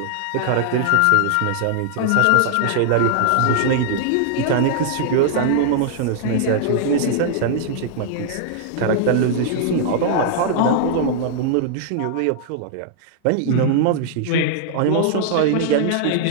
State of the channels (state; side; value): different; both; correlation -0.01